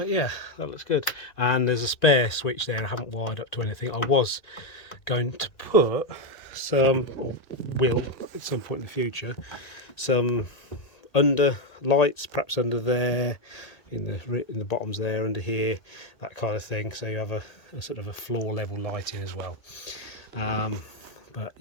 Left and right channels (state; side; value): late; right; 1.8 ms